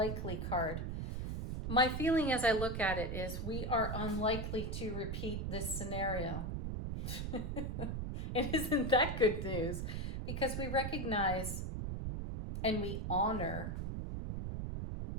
card. My feeling as I look at it is we are unlikely to repeat this scenario. And isn't that good news? Because we recognize and we honor.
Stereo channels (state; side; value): noise; right; rumble, 3 dB below the sound